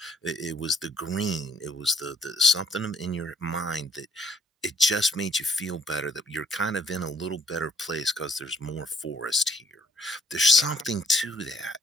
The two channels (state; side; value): normal; both; correlation 0.62